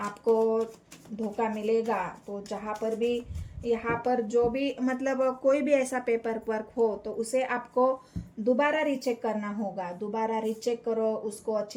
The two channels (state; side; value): identical; both; correlation 1.00